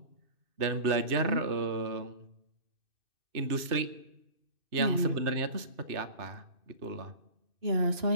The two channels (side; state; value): left; late; 2.6 ms